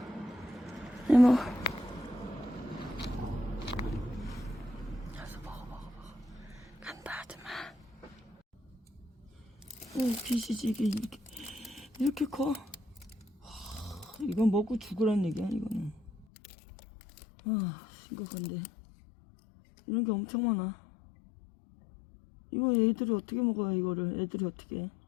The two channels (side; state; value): right; drops out; at 16.2 s